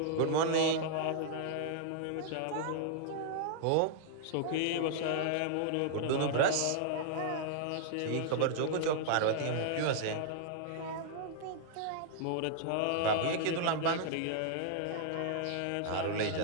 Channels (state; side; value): different; both; correlation -0.01